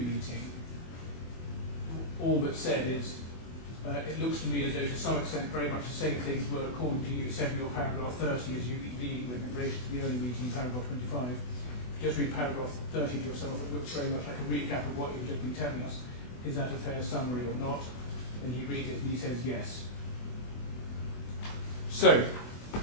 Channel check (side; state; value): right; late; 24 ms